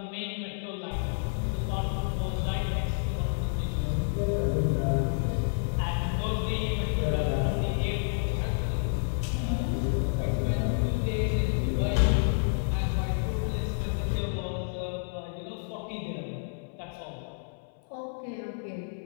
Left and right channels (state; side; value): silent; right; 58 dB below the other